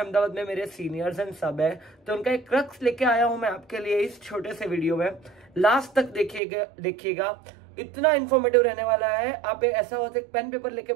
में मेरे सीनियर्स एंड सब है, तो उनका एक क्रक्स लेके आया हूं मैं आपके लिए इस छोटे से वीडियो में। लास्ट तक देखिएगा, इतना इन्फॉर्मेटिव रहने वाला है। आप ऐसा होता है पेन पेपर लेके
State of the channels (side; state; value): left; drops out; at 6.4 s